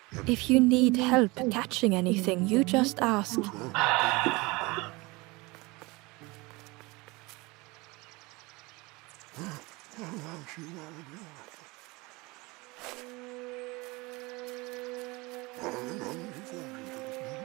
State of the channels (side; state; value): left; quieter; 24.0 dB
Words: If you need help catching anything, you just ask.